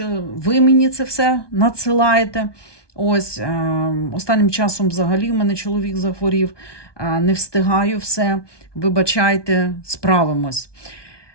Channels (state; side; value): late; right; 1.2 ms